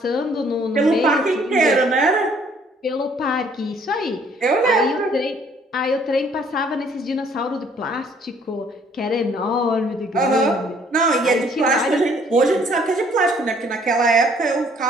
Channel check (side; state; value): both; normal; correlation 0.61